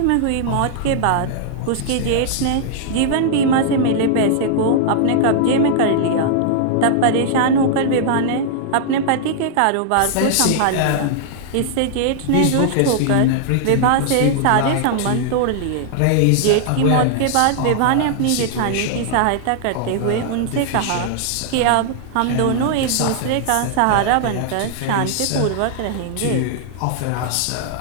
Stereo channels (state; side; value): different; both; correlation -0.01